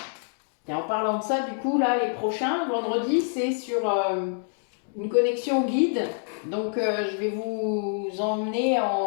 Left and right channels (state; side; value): silent; right; 61 dB below the other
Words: Et en parlant de ça, du coup, là, les prochains, vendredi, c'est sur une connexion guide. Donc, je vais vous emmener